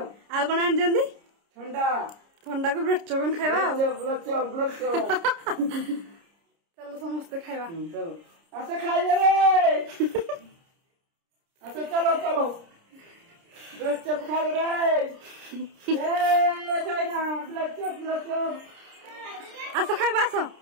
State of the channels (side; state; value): left; late; 30 ms